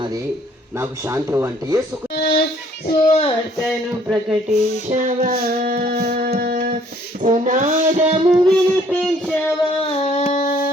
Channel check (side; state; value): both; normal; correlation 0.61